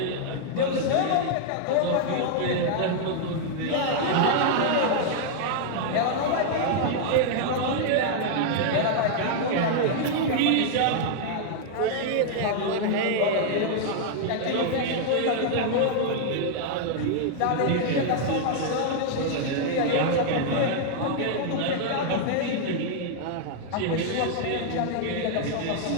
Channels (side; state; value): both; different; correlation -0.01